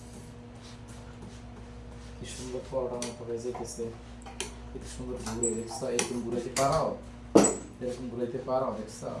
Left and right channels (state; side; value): identical; both; correlation 1.00